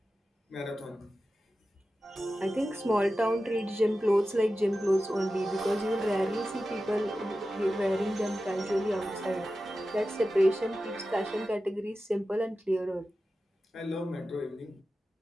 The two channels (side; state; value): both; normal; correlation 0.93